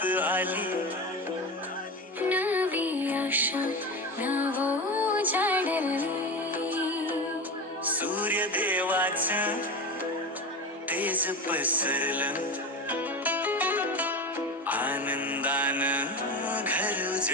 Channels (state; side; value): normal; both; correlation 0.24